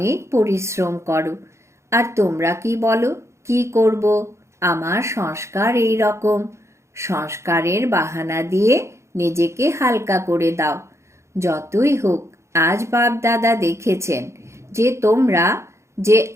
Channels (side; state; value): left; late; 0.14 ms